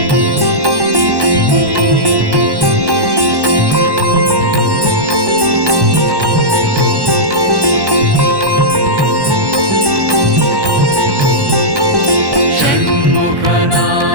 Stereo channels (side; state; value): left; late; 1.1 ms